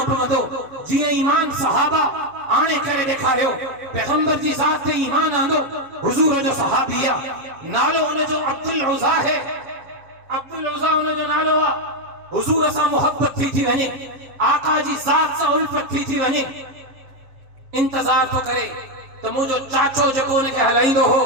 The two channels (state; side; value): late; left; 7.5 ms